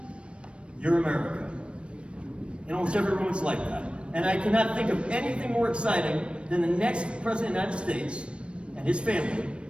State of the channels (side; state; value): left; late; 0.059 ms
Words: You're America. And almost every room is like that. And I cannot think of anything more exciting than the next President of the United States and his family